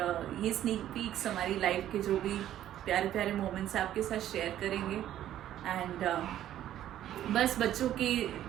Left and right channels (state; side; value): quieter; left; 12.0 dB